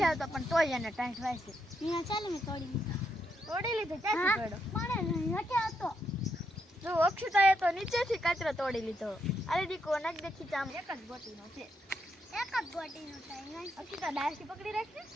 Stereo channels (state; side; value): normal; both; correlation 0.79